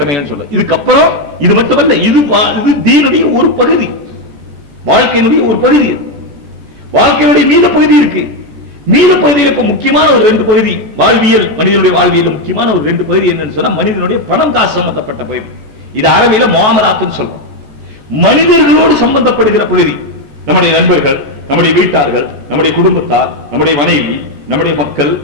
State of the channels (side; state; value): left; late; 14 ms